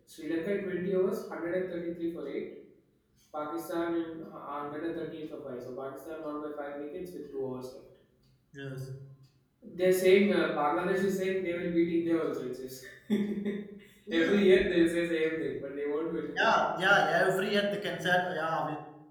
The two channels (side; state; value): both; identical; correlation 1.00